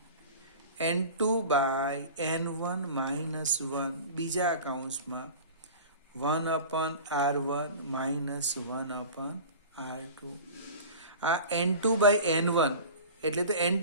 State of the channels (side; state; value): both; inverted; correlation -0.37